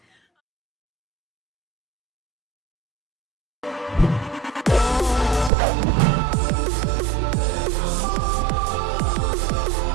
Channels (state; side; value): drops out; left; at 5.5 s